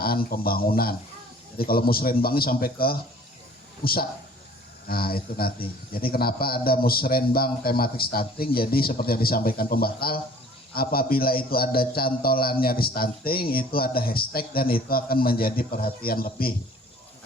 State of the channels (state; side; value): normal; both; correlation 0.51